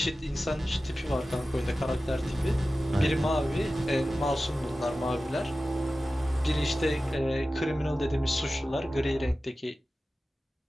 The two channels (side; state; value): both; normal; correlation 0.95